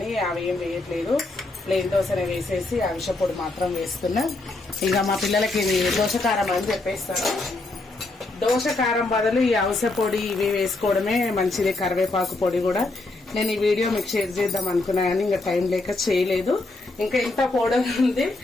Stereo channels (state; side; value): quieter; right; 3.1 dB